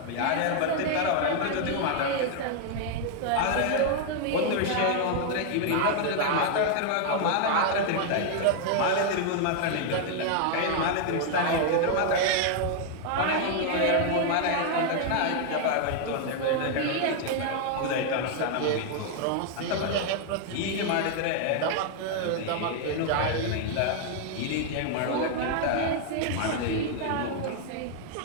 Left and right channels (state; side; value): different; both; correlation 0.00